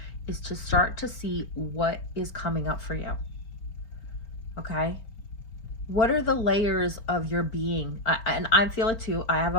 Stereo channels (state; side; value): late; right; 4.7 ms